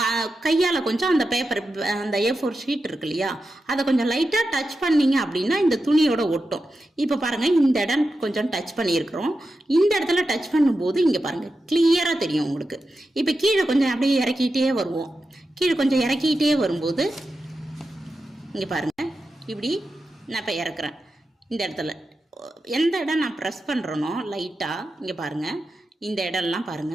கையால் கொஞ்சம் அந்த பேப்பர், அந்த A4 ஷீட் இருக்கு இல்லையா, அதை கொஞ்சம் லைட்டாக டச் பண்ணிங்க அப்படின்னா இந்த துணியோட ஒட்டும். இப்போ பாருங்கள், இந்த இடம் கொஞ்சம் டச் பண்ணியிருக்கிறோம். இந்த இடத்துல டச் பண்ணும்போது இங்கே பாருங்கள் கிளியராக தெரியும் உங்களுக்கு. இப்போ கீழே கொஞ்சம் அப்படியே இறக்கிட்டே வருவோம். கீழே கொஞ்சம் இறக்கிட்டே வரும்போது இங்கே பாருங்கள், இப்படி நான் இப்போ இறக்குறேன். இந்த இடத்துல எந்த இடம் நான் ப்ரெஸ் பண்ணுறேனோ லைட்டாக இங்கே பாருங்கள், இந்த இடம்லாம்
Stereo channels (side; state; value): both; normal; correlation 0.90